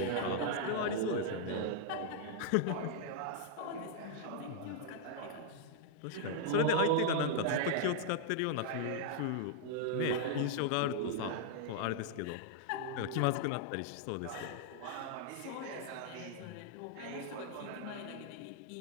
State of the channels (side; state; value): both; different; correlation -0.01